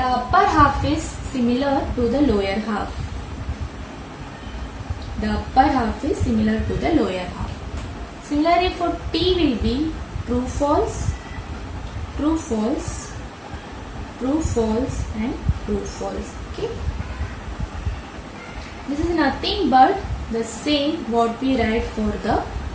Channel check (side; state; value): both; identical; correlation 1.00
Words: upper half is similar to the lower half. The upper half is similar to the lower half. Similarly, for T will be true, false, true, false, true, false and true, false. Okay. This is nothing but the same what we write for the